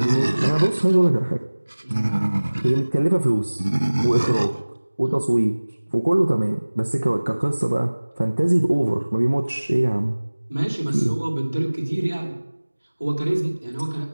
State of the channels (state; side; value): inverted; both; correlation -1.00